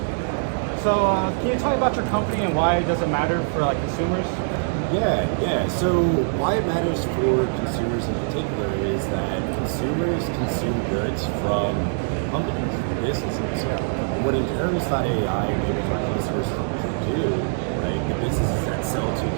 you tell me about your company and why it doesn't matter for like consumers? Yeah. So why it matters for consumers in particular is that consumers consume goods from companies, businesses. What Inheritance.ai enables our customers to do, right, the businesses that sell to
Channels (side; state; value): left; silent; digital silence